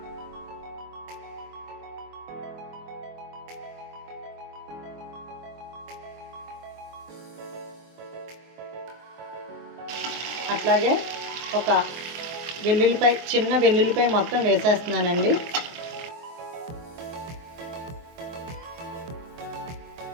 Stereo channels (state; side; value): late; left; 24 ms